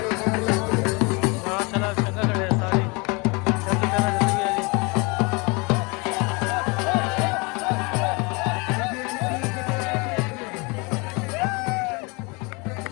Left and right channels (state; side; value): quieter; right; 28.8 dB